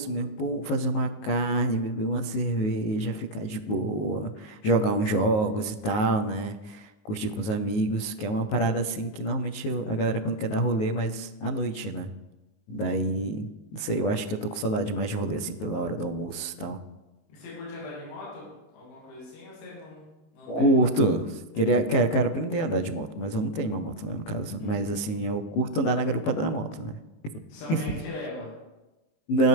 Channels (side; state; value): right; late; 19 ms